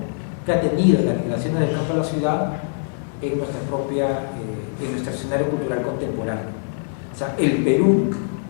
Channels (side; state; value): right; silent; 64 dB below the other